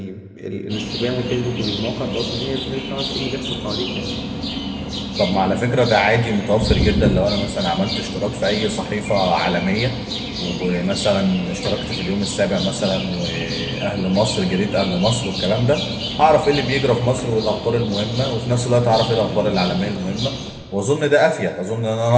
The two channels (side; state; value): both; identical; correlation 1.00